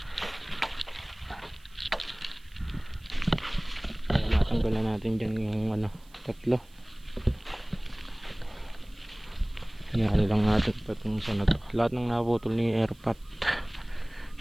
natin dyan yung ano, tatlo. Hinahali lang natin patong sa na to. Lahat ng naputol ni airpot.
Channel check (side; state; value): right; noise; hiss, 29 dB below the sound